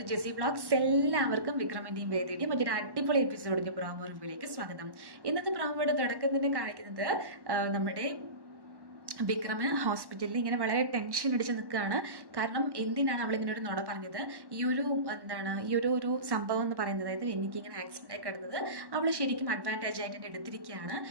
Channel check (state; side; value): late; left; 1.1 ms